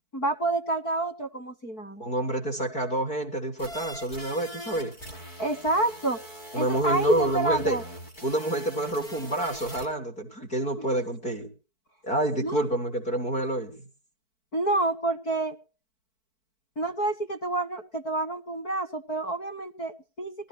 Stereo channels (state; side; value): late; right; 4.5 ms